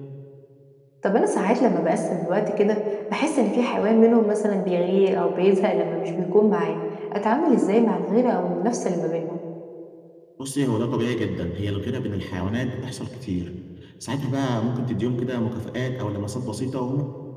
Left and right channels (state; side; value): identical; both; correlation 1.00